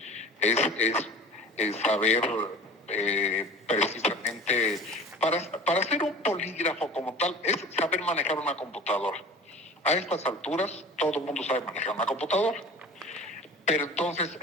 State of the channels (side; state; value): both; normal; correlation 0.40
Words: Es saber precisamente, para hacer un polígrafo como tal, es saber manejar una computadora. A estas alturas, todo el mundo sabe manejar una computadora. Pero entonces,